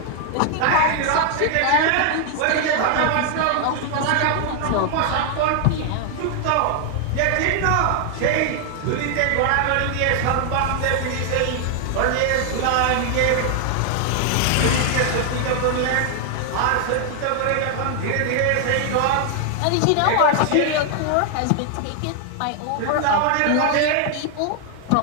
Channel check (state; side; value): different; both; correlation 0.00